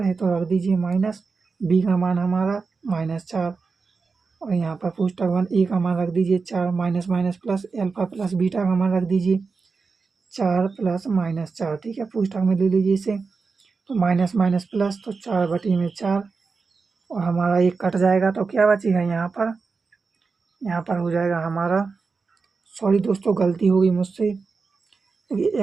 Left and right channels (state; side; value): quieter; left; 4.6 dB